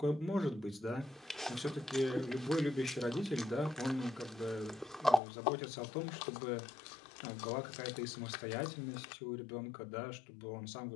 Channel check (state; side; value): drops out; right; at 5.2 s